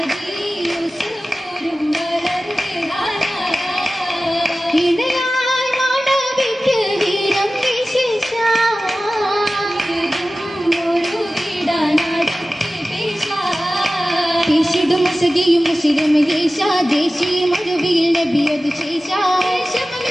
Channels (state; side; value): normal; both; correlation 0.96